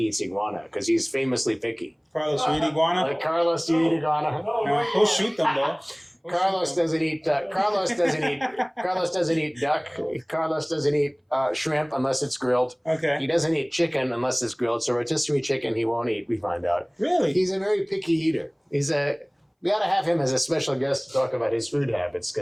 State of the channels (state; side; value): identical; both; correlation 1.00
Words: iguana because he's famously picky. Carlos, you eat iguana? Like Carlos, do you eat iguana? No, he'll shoot them though. Carlos doesn't eat. Carlos doesn't eat duck. Carlos doesn't eat shrimp unless it's grilled. Okay. He doesn't eat chicken unless it's grilled. So rotisserie chicken he won't eat. We find out. Really? He's a very picky eater. We ought to have him as a special guest to talk about his food habits